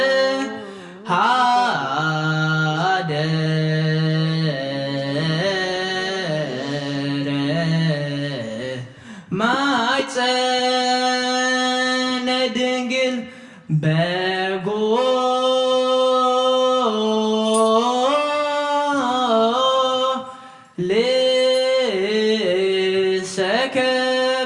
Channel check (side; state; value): both; identical; correlation 1.00